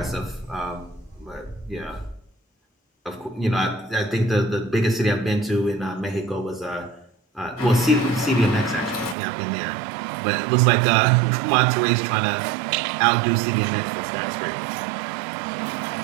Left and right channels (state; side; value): drops out; left; at 9.2 s